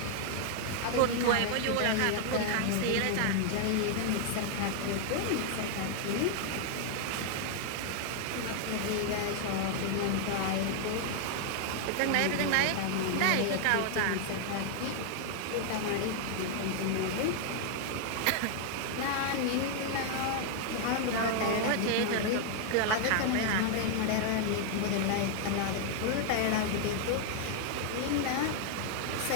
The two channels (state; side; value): different; both; correlation 0.00